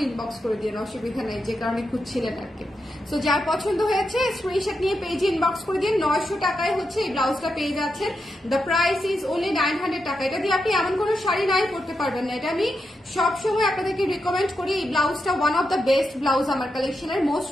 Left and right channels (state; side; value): normal; both; correlation 0.86